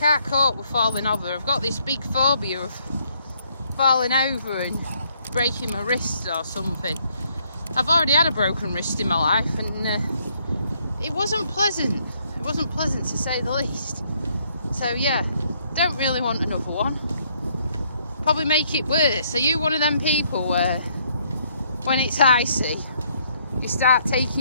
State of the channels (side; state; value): both; inverted; correlation -0.69